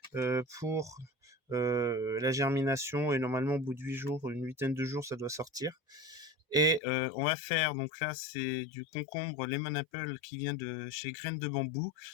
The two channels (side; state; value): right; drops out; at 6.8 s